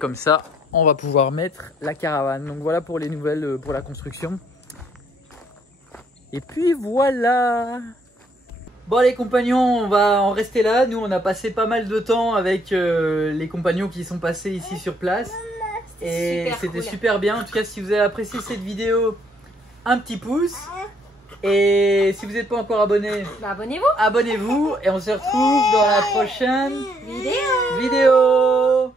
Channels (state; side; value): normal; both; correlation 0.68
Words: ça, on va pouvoir mettre la caravane. Donc voilà pour les nouvelles pour la construction. Et puis voilà. Bon les compagnons, on va en rester là. Nous on a passé pas mal de temps avec les compagnons qui sont passés ici sur place. Et c'était super bien. En tout cas, si vous avez apprécié cette vidéo, un petit pouce. Et si vous n'êtes pas encore abonné, abonnez-vous. Abonnez-vous et on se retrouve dans la prochaine vidéo.